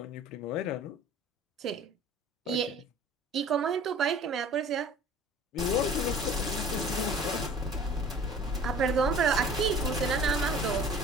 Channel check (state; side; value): normal; both; correlation 0.46